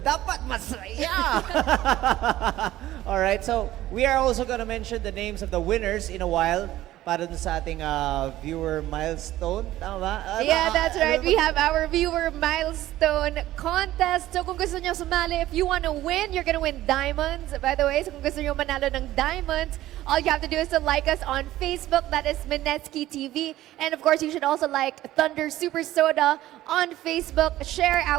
masaya! Alright, so we are also gonna mention the names of the winners in a while. para dun sa ating viewer milestone. Tama ba? Yeah, that's right. We have our viewer milestone contest. So kung gusto nyo sumali, if you want to win, you're gonna win diamonds. By the way, so kung gusto nyo manalo ng diamonds, all you have to do is to like us on Facebook. That is Minetsky TV. And of course, you should also like Thunder Super Soda on Facebook. Share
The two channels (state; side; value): quieter; left; 14.8 dB